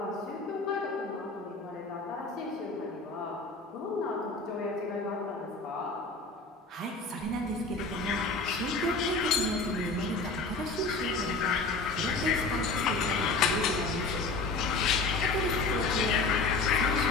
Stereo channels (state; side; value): quieter; right; 3.7 dB